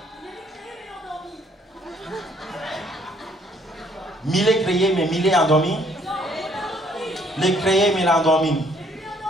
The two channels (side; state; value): both; normal; correlation 0.64